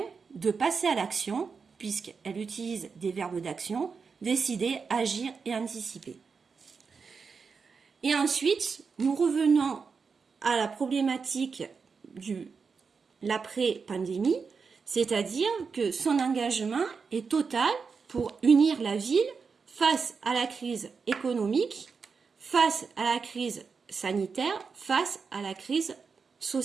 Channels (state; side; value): quieter; left; 5.3 dB